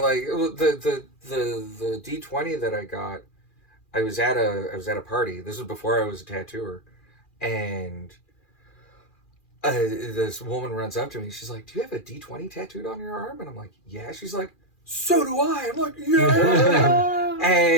the D20 that I got, I was at a party. This was before I was a tattooer, and this woman runs up to me. She's like, "Do you have a D20 tattooed on your arm?" And I'm like, "Yeah." She's like, "So do I." I'm like, "Yeah."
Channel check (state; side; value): late; right; 2.4 ms